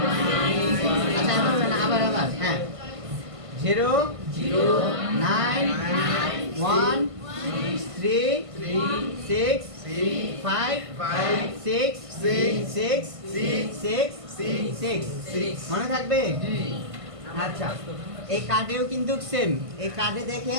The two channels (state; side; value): late; left; 1.5 ms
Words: আচ্ছা আবার হ্যাঁ 09113165666 মনে থাকবে? আচ্ছা এই কার্ডেও কিন্তু সেম। এই কার্ডে